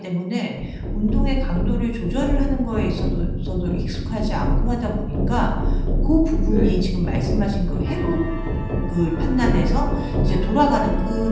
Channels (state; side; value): identical; both; correlation 1.00